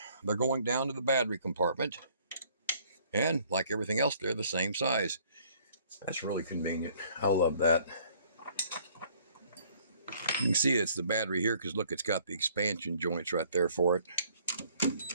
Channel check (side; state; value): both; inverted; correlation -0.60